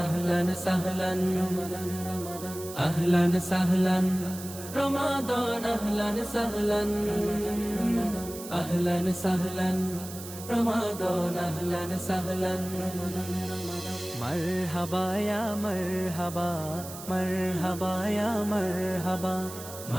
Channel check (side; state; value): right; noise; hiss, 13 dB below the sound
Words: আহলান সাহলান রমাদান রমাদান আহলান সাহলান রমাদান আহলান সাহলান আহলান সাহলান রমাদান আহলান সাহলান মারহাবা ইয়া মারহাবা মারহাবা ইয়া মারহাবা